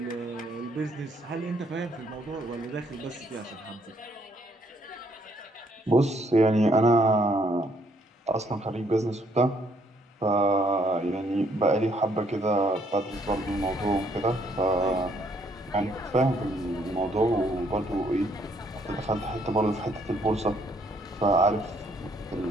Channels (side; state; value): both; normal; correlation 0.68